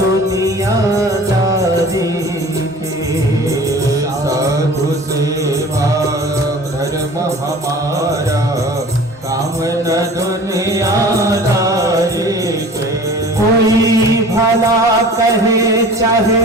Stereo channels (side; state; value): both; normal; correlation 0.43